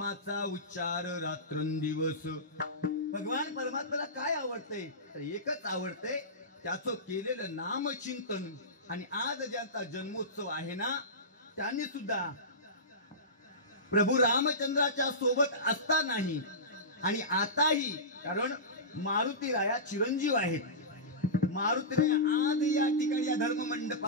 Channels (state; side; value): normal; both; correlation -0.19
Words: उच्चार रात्रंदिवस. भगवान परमात्म्याला काय आवडतंय तर एकच आवडतंय, त्याचं केलेलं नामचिंतन. आणि आज ज्यांचा जन्मोत्सव आहे ना, त्यांनी सुद्धा प्रभू रामचंद्राच्या सोबत असतानाही आणि आताही, कारण मारुतीराया चिरंजीव आहेत. मारुतीराया आज या ठिकाणी या धर्म